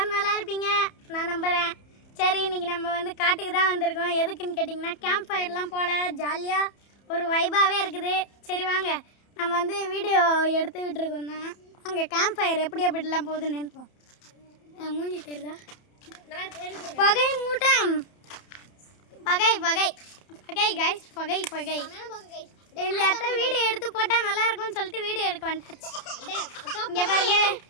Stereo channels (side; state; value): right; late; 31 ms